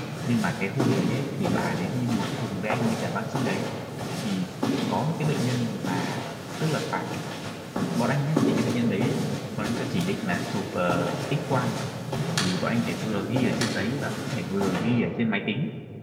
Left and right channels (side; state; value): both; identical; correlation 1.00